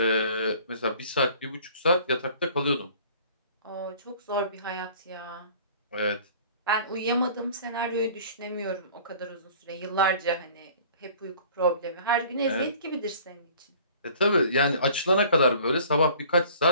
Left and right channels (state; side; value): inverted; both; correlation -0.49